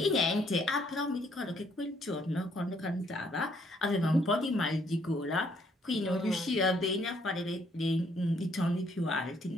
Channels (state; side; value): normal; both; correlation 0.68